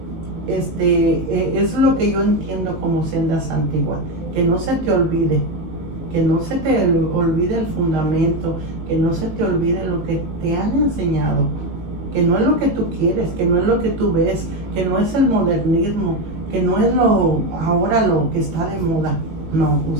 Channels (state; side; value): late; left; 18 ms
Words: lo que yo entiendo como sendas antiguas, que no se te olvide. Que no se te olvide el fundamento, que no se te olvide lo que te han enseñado, que no es lo que tú quieres, que no es lo que tú ves, que no es el modernismo, que no es ahora lo que está de moda. No,